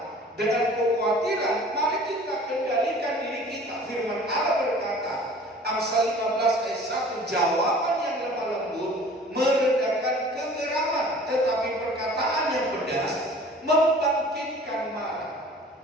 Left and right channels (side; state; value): both; normal; correlation 0.47